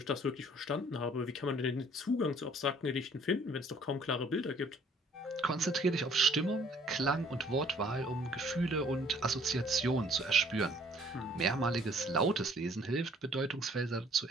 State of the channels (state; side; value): normal; both; correlation 0.58